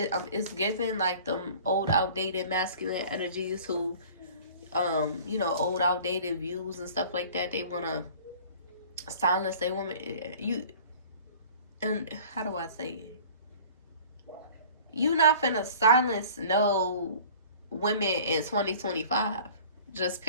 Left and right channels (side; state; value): both; inverted; correlation -0.46